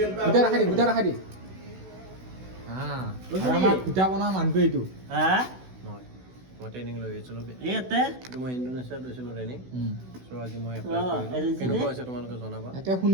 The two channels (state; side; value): late; left; 16 ms